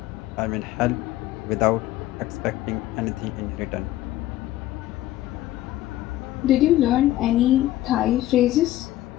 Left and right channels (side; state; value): right; quieter; 14.7 dB